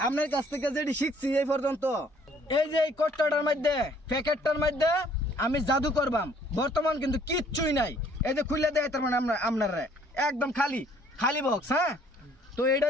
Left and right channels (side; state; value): both; normal; correlation 0.60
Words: আপনার কাছ থেকে যেটি শিখছি এই পর্যন্ত, এই যে এই কট্টাটার মধ্যে, প্যাকেটটার মধ্যে আমি জাদু করবাম। বর্তমান কিন্তু কিচ্ছুই নাই। এই যে খুলে দেয় তার মানে আপনারা একদম খালি খালি বক্স। হ্যাঁ, তো